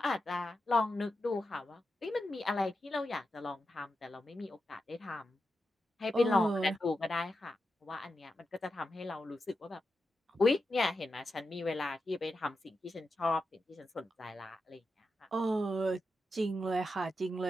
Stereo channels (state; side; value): normal; both; correlation 0.88